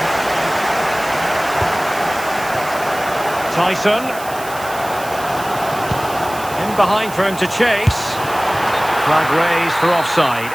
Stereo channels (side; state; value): right; noise; hiss, 14 dB below the sound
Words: Tyson. In behind for him to chase. Flag raised for offside.